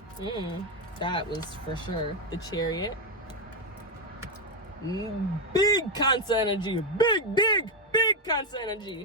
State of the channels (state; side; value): normal; both; correlation 0.05